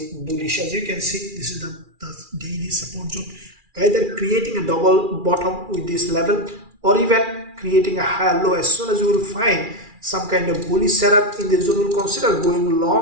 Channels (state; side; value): late; left; 2.4 ms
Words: bullish. As you can see, this is the daily support zone, either creating a double bottom with this level or even creating a higher low. As soon as you will find some kind of bullish setup in this zone, will consider going